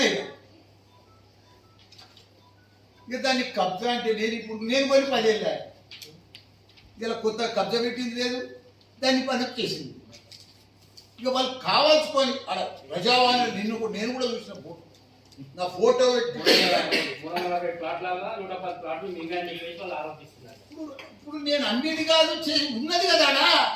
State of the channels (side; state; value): both; identical; correlation 1.00